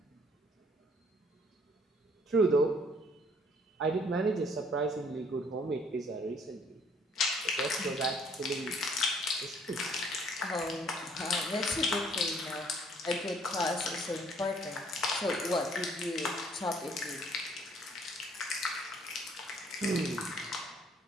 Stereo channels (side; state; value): both; normal; correlation 0.61